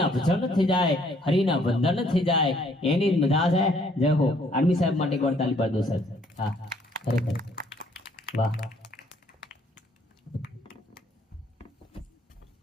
ભજન થઈ જાય. હરિના વંદન થઈ જાય એની જ મજા છે. જય હો. આર્મી સાહેબ માટે એકવાર તાલી પાડી દો સાહેબ. હા ખરેખર વાહ.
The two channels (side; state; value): both; normal; correlation 0.64